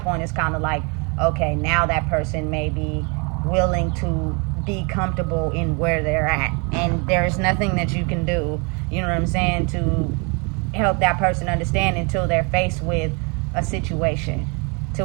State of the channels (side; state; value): left; quieter; 32.9 dB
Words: point, it's kind of like, okay, now that person may be willing to be comfortable in where they're at, and there's nothing that you can do, to help that person understand until they're faced with a situation to